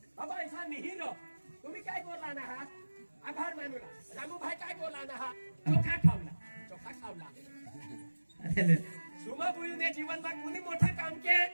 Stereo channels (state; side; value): inverted; both; correlation -1.00